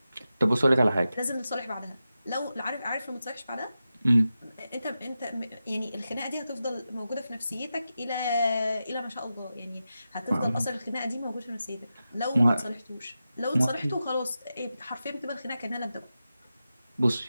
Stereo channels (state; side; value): inverted; both; correlation -0.91